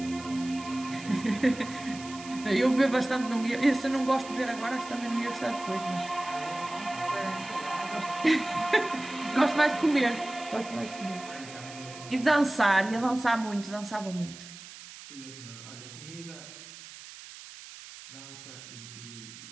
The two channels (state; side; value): noise; right; hiss, 15 dB below the sound